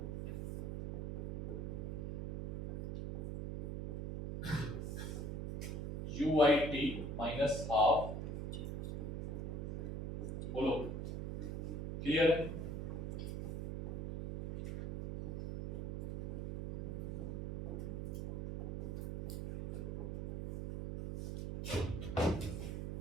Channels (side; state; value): right; noise; hum, 4 dB below the sound